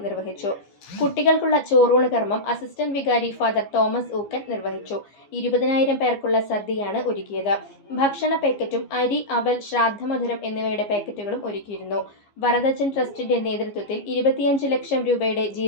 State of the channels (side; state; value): right; late; 14 ms